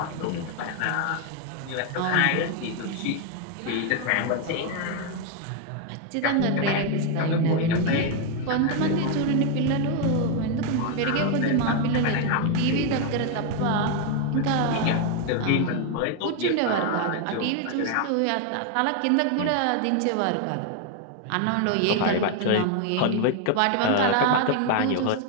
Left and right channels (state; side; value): different; both; correlation 0.01